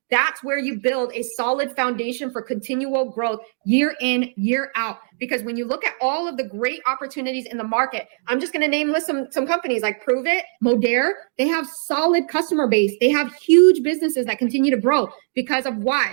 that's where you build a solid foundation for continual growth year in, year out. Because when you look at all of the great opportunities in the market, I'm just going to list some companies like Prove It, Modere. They have solid customer base. They have huge businesses that continue to grow because of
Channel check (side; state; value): left; silent; digital silence